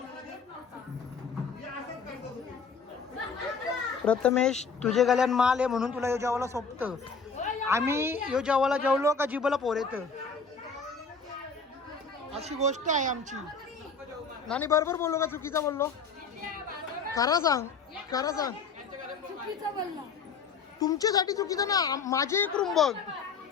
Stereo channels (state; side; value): quieter; right; 5.1 dB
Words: प्रथमेश तुझे गल्यान माल आहे म्हणून तुला यो जेवायला सोपतं. आम्ही यो जेवायला जेवलो का जिबला पोर येतं. अशी गोष्ट आहे आमची. नानी बरोबर बोललो का चुकीचा बोललो? खरा सांग. खरा सांग. तुमच्यासाठी चुकीचं ना. माझे एक रूम बघ.